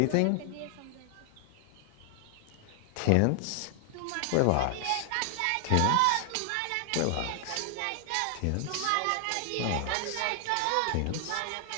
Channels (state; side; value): different; both; correlation 0.00